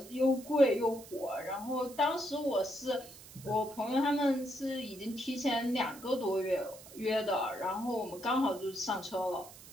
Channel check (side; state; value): right; noise; hiss, 18 dB below the sound